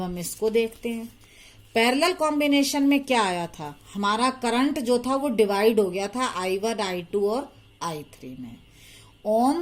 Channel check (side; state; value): both; identical; correlation 1.00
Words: हम इसको देखते हैं। पैरेलल कॉम्बिनेशन में क्या आया था, हमारा करंट जो था वो डिवाइड हो गया था I1 I2 और I3 में।